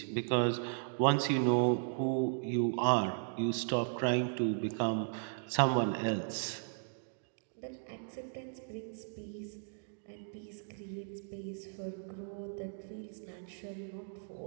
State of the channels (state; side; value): silent; left; digital silence